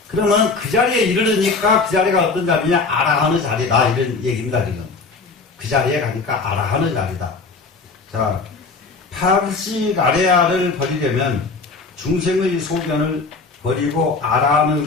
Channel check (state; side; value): quieter; right; 4.2 dB